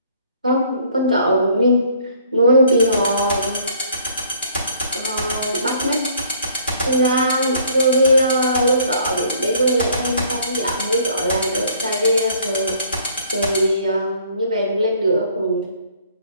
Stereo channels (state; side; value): inverted; both; correlation -0.59